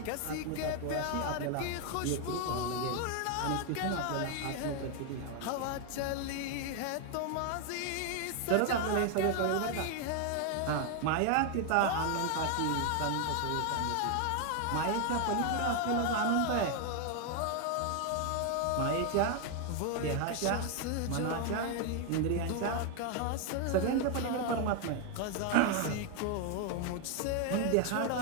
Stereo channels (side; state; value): both; different; correlation 0.01